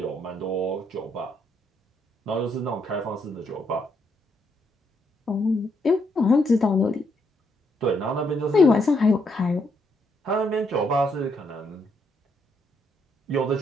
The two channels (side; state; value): both; normal; correlation 0.75